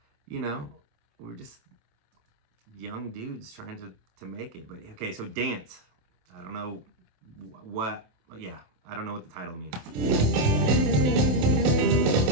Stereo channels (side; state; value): left; late; 27 ms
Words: you know, we're just young dudes trying to make it. But okay, so Dance. I don't know what, yeah, I don't know what the title means.